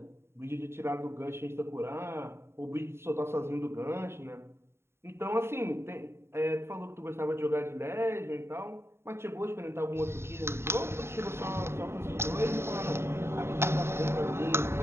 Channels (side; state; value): left; late; 0.12 ms